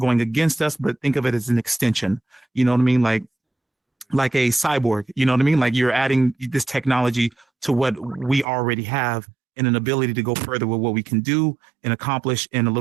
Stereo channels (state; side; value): drops out; left; at 8.5 s